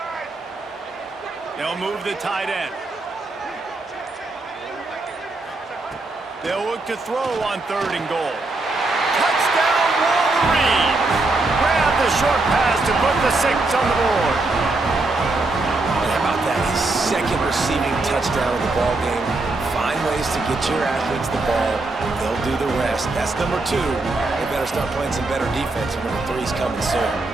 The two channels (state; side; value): quieter; left; 3.2 dB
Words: They'll move the tight end. They'll look to throw on third and goal. Touchdown, Wolverines! Grab the short pass to put the 6 on the board. How about that? His second receiving touchdown of the ball game. Find ways to get your athletes the ball. They'll do the rest. That's number 2. They better start playing some better defense. Number 3's coming soon.